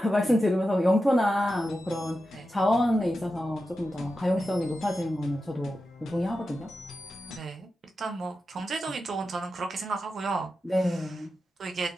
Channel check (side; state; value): both; normal; correlation 0.91